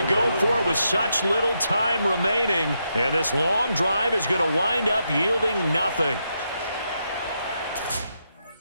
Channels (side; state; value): both; inverted; correlation -0.82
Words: go for it with such little time remaining. And this long drive is going to wind up yielding nothing.